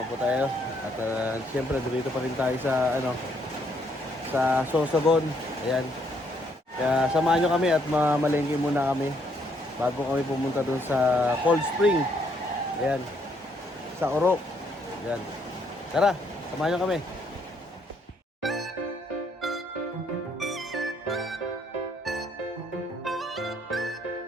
po tayo. At siyempre dito pa rin tayo sa sa Sorsogon. Ayan. Kaya samahan nyo kami at mamalengke muna kami bago kami pumunta dun sa Cold Spring. Ayan. Sa Oro. Ayan. Tara, samahan nyo kami.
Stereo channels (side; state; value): both; normal; correlation 0.71